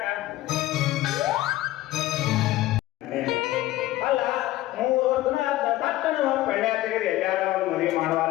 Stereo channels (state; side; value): quieter; right; 16.1 dB